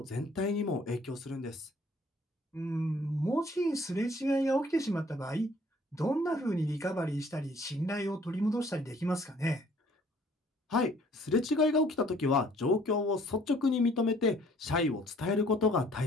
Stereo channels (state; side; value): normal; both; correlation 0.58